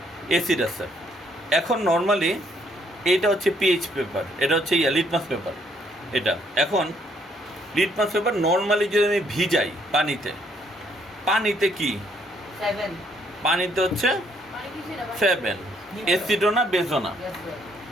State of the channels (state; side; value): normal; both; correlation 0.68